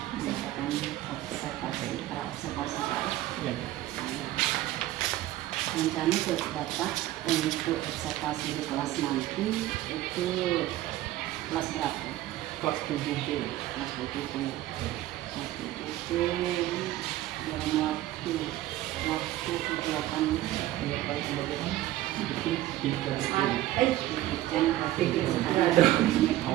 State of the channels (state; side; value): quieter; left; 14.9 dB